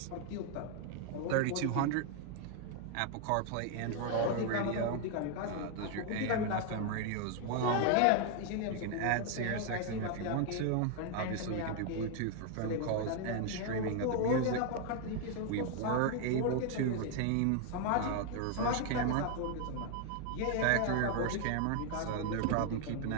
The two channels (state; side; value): different; both; correlation 0.00